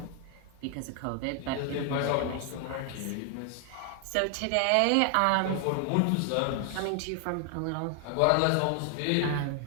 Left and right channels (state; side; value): different; both; correlation 0.00